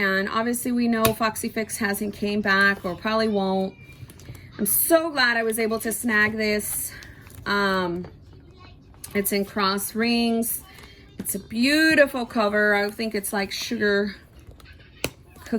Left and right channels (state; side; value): identical; both; correlation 1.00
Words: obviously we know Foxy Fix hasn't came back, or probably won't. I'm so glad I was able to snag this. It's in cross rings. It's a beautiful cover. I think it's like sugar